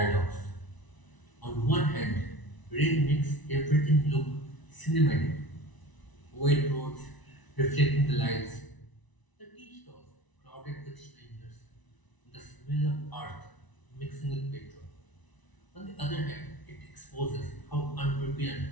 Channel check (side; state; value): right; late; 1.0 ms